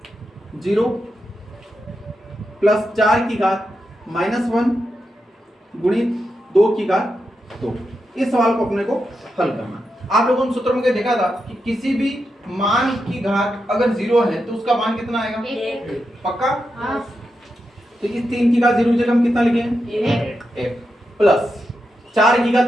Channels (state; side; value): normal; both; correlation 0.87